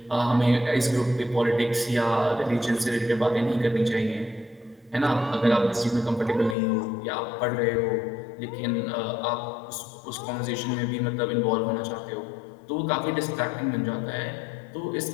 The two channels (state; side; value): drops out; right; at 6.6 s